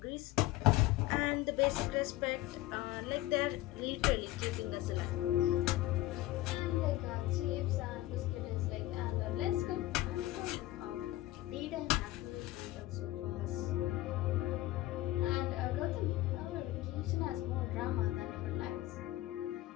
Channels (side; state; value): right; quieter; 16.5 dB